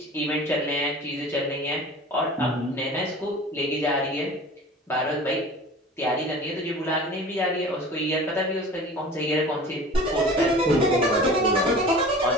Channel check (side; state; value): both; normal; correlation 0.41